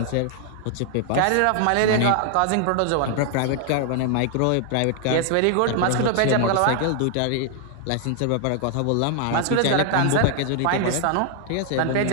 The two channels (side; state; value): both; different; correlation 0.00